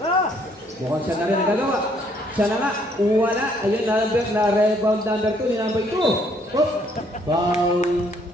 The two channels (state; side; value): normal; both; correlation 0.66